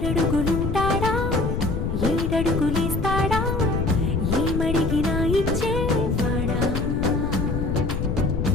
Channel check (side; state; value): left; noise; rumble, 1 dB below the sound